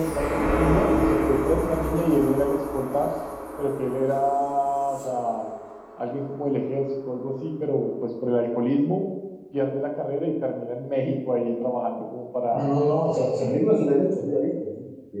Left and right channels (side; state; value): both; identical; correlation 1.00